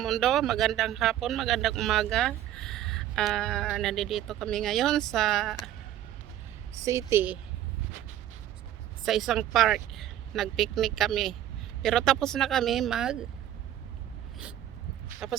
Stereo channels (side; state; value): left; quieter; 12.3 dB